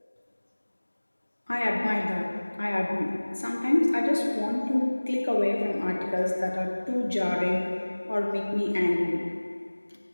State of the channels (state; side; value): inverted; both; correlation -1.00